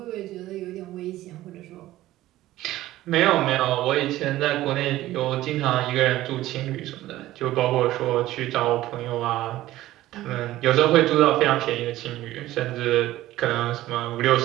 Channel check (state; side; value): quieter; left; 15.5 dB